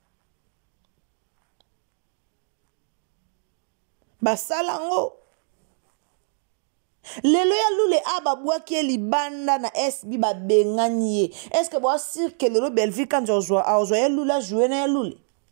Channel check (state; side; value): silent; left; 62 dB below the other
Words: basalango lelo ya lule ababwaki libanda na SB babenganie est-ce que boa sir que lelo Belvi Kandi ozwa ya lule jouer na ya lule